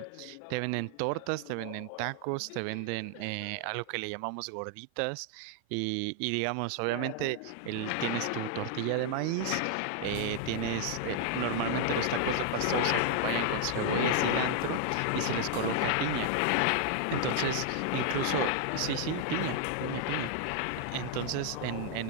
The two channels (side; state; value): both; different; correlation 0.00